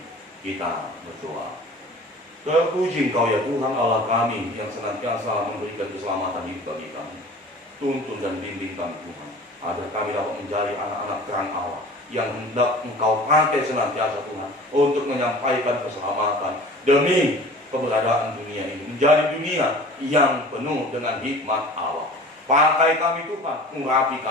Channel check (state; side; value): normal; both; correlation 0.42